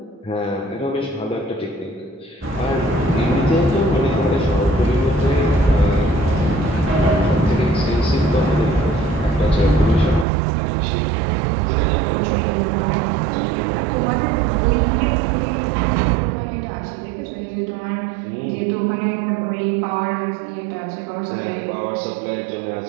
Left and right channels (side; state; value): left; drops out; at 10.2 s